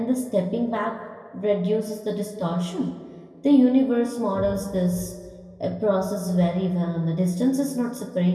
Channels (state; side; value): identical; both; correlation 1.00